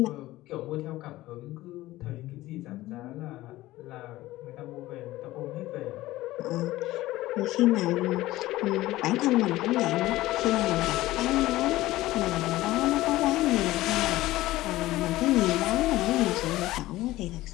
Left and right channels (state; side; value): quieter; right; 17.0 dB